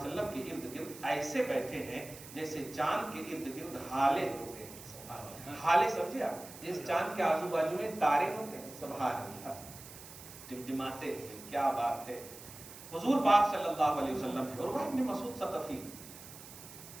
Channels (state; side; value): noise; right; hiss, 15 dB below the sound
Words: کے ارد گرد ایسے بیٹھے ہیں جیسے چاند کے ارد گرد ہالے ہوتے ہیں۔ ہالے سمجھے آپ؟ جس چاند کے آزو بازو میں تارے ہوتے ہیں، سبحان اللہ، ٹمٹماتے ہیں، کیا بات ہے۔ حضور پاک صلی اللہ علیہ وسلم ہے، عروہ ابن مسعود ثقفی